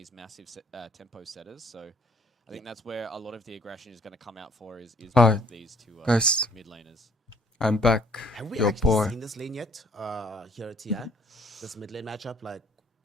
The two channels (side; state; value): both; normal; correlation 0.60